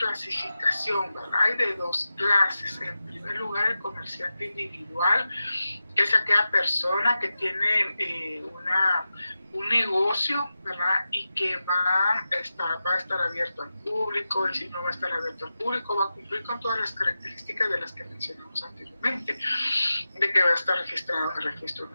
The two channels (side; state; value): both; inverted; correlation -0.93